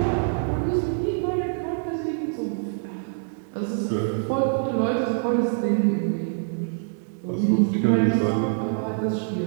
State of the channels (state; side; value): silent; left; digital silence